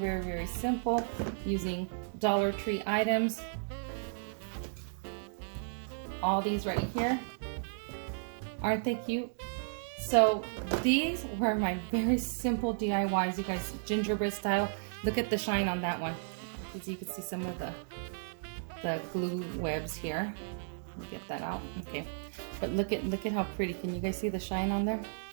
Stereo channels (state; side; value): silent; left; digital silence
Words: very simple, using Dollar Tree items. All these right here. Aren't they cute? So these were my very simple DIYs, you guys, gingerbread style. Look at the shine on that one. As you can see some of the glue webs here. Let me get that out. Okay. But look at how pretty. Can you guys see the shine on there?